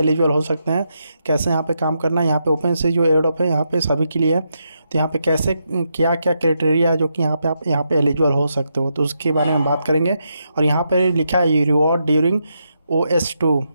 हो सकते हैं। कैसे यहाँ पे काम करना है, यहाँ पे ओपन सी जो एयरड्रॉप है यहाँ पे सभी के लिए है। तो यहाँ पे कैसे क्या क्या क्राइटेरिया है जो कि यहाँ पे आप यहाँ पे एलिजिबल हो सकते हो, तो उसके बारे में बात करेंगे। और यहाँ पे लिखा है रिवॉर्ड ड्यूरिंग OS2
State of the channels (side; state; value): both; inverted; correlation -0.82